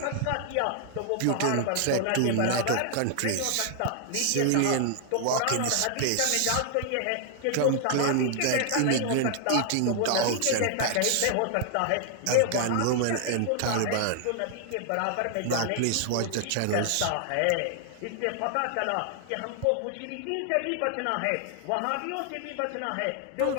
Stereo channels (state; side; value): different; both; correlation 0.00